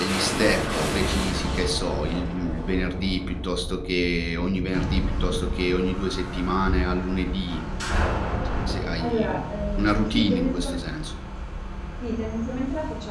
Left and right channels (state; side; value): identical; both; correlation 1.00